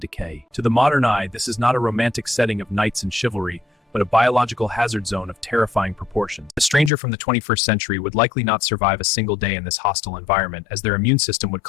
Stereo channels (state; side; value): drops out; right; at 6.9 s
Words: To the modern eye, this is not a romantic setting of knights and chivalry, but a biological hazard zone of terrifying proportions. A stranger from the 21st century would likely not survive a single day in this hostile environment, as their immune system would